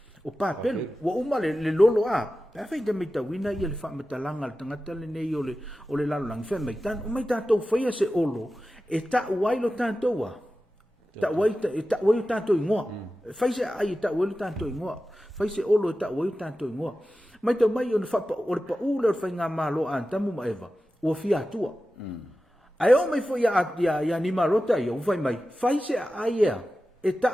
papel o uma le lolo pa fai de mita wina ia le fa metalanga le tangata le nei o le lalo lang fe mai tan o mai ta to fai se olo e ta wai lo tanto wa ta wai tanto ingoa fai se ai ta wai tanto ingoa fai se olo ta wai tanto ingoa mai to mai on fa o pa u le fai nga malo an tamu ma eva o fia tua ai o mai fo ya ni marota yo fai mai fai se ai e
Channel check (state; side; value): normal; both; correlation 0.94